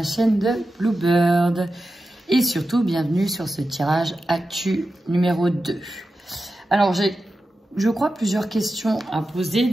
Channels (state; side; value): normal; both; correlation 0.92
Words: chaîne de Bluebird et surtout bienvenue sur ce tirage actu numéro 2. Alors j'ai, je crois, plusieurs questions à poser,